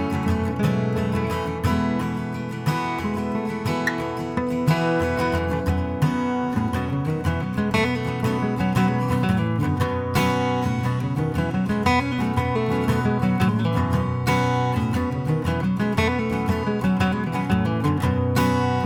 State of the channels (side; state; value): both; identical; correlation 1.00